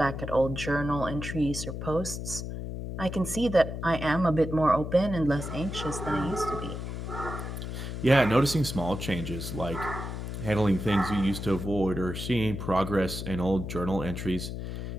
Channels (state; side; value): noise; left; hum, 6 dB below the sound